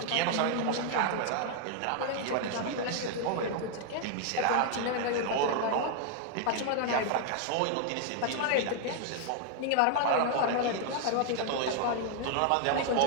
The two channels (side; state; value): both; different; correlation 0.00